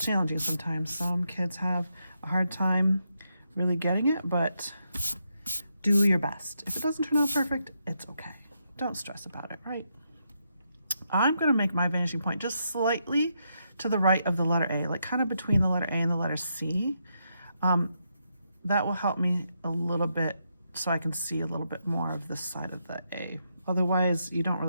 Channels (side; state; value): both; inverted; correlation -0.81